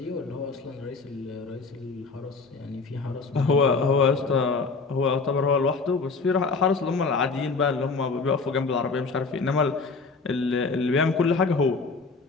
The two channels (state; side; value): quieter; right; 4.3 dB